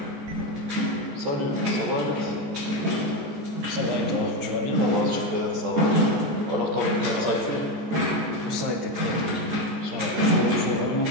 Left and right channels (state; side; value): late; left; 14 ms